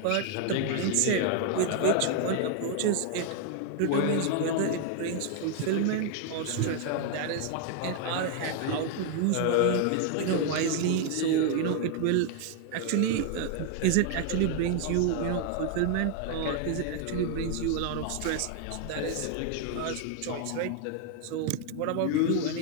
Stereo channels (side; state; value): both; different; correlation 0.00